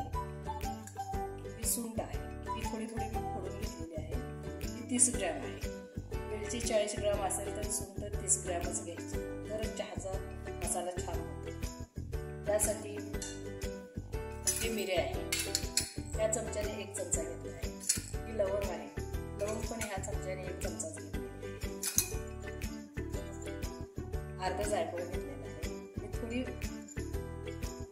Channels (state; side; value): identical; both; correlation 1.00